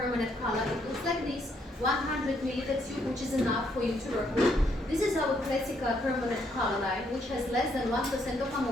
color. It looks like this, 100 milliliter tube, which is enough for you to work with. This is our classic permanent color line, which has less than 1% of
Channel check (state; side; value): normal; both; correlation 0.72